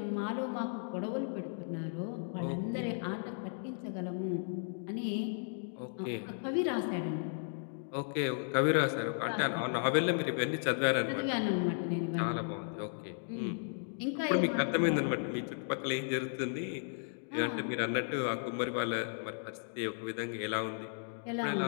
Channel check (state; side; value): silent; right; digital silence